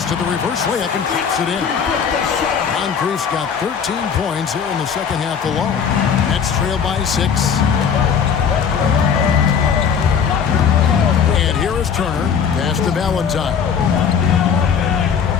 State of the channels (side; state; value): right; quieter; 7.0 dB